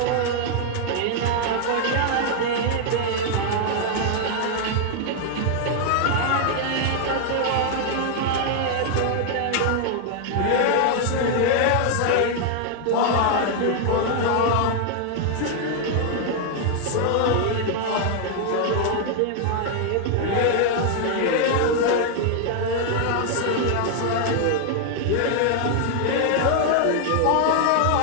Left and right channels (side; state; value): both; different; correlation 0.00